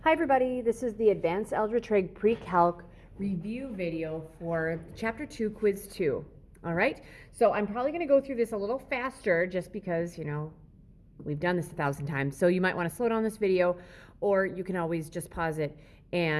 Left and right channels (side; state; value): both; identical; correlation 1.00